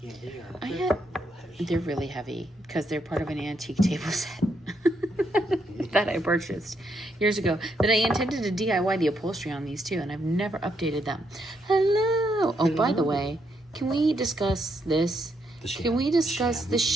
they are. They're really heavy because they're part of an antique table set that I purchased years ago. That I intended to DIY the upholstery on these too, and I've never updated them. Hello. Oh, by the way, can we discuss this? Can we discuss the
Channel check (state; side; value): normal; both; correlation 0.77